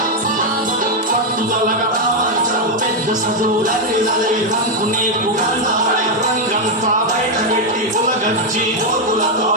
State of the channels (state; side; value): normal; both; correlation 0.02